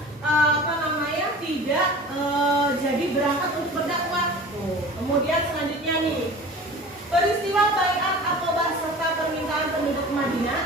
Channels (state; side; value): normal; both; correlation 0.40